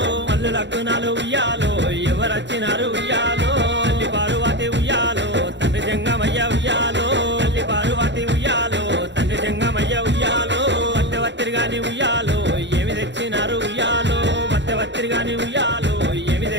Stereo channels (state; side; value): late; left; 0.52 ms